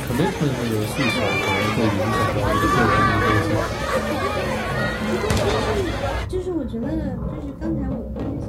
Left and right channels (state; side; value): identical; both; correlation 1.00